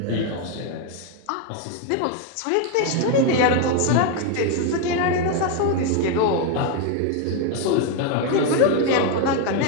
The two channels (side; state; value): both; different; correlation 0.01